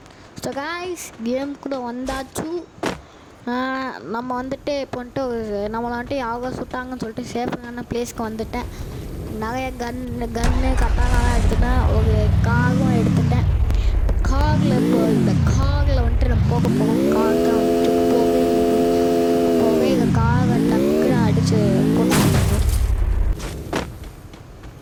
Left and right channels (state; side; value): identical; both; correlation 1.00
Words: ஸோ காய்ஸ் கேமுக்குள்ளே வந்தாச்சு. நம்ம வந்துட்டு இப்போ வந்துட்டு நம்மளை வந்துட்டு யாவோ சுட்டாங்கன்னு சொல்லிட்டு சேஃபான பிளேஸ்க்கு வந்துட்டேன். நிறைய கன்னு கட்டாலாம் எடுத்துட்டேன். ஒரு காகும் எடுத்துட்டேன். காகில் இப்போ இந்த காகில் வந்துட்டு நம்ம போக போவோம். காகை வந்துட்டு போக இந்த காகை டக்குன்னு அடித்து போட்டு